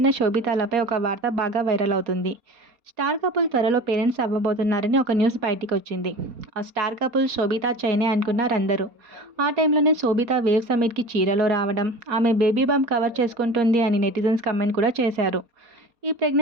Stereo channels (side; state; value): left; late; 4.3 ms